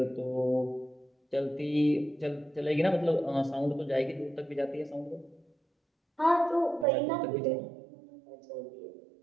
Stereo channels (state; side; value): drops out; left; at 6.9 s